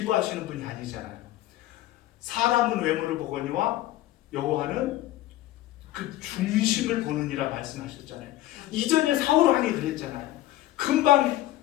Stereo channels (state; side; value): quieter; right; 15.5 dB